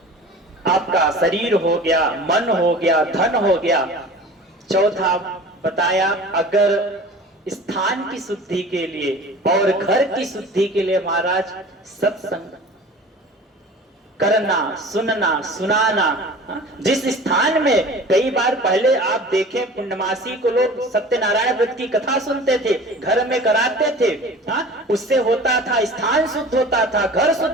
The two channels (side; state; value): both; normal; correlation 0.41